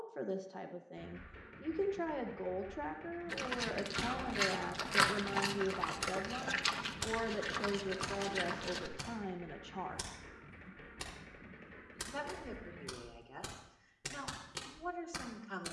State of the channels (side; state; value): both; identical; correlation 1.00